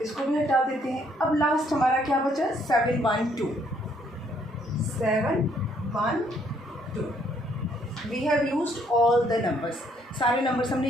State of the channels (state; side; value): normal; both; correlation 0.67